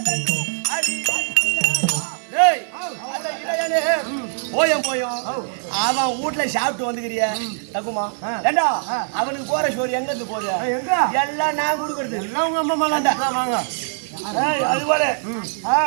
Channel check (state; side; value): silent; left; digital silence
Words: போயும் அவன் வீட்டுல சாப்பிட்டு வந்துக்கிறிய தக்குமா ஏண்டா அவனுக்கு போற சோறு எங்க இருந்து போகுது? எல்லாம் நான் கொடுக்கறது. எல்லாம் உங்க அம்மா மேலாண்டா வாங்க. அது போல